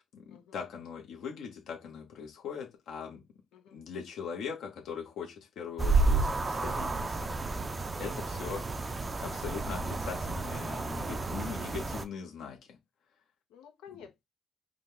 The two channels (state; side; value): normal; both; correlation 0.71